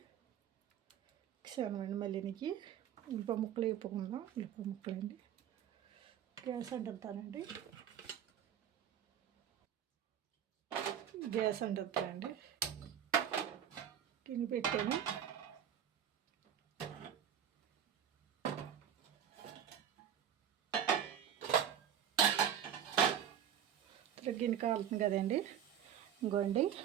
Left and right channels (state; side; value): quieter; left; 9.3 dB